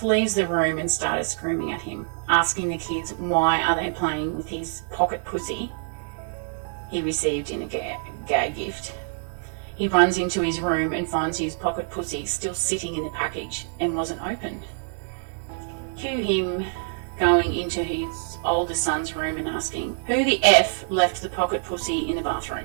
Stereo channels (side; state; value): left; silent; 61 dB below the other